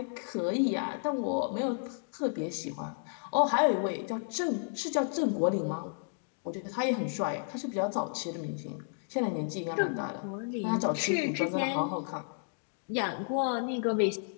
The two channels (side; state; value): right; silent; digital silence